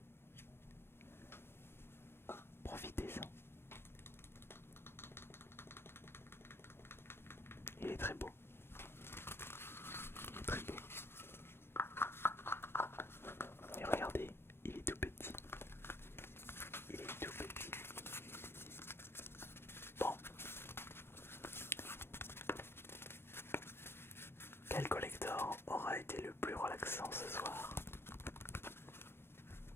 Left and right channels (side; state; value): right; late; 0.12 ms